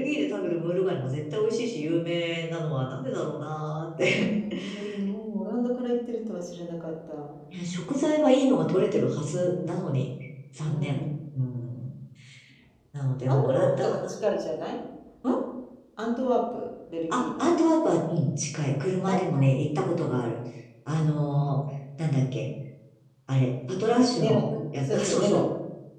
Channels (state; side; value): identical; both; correlation 1.00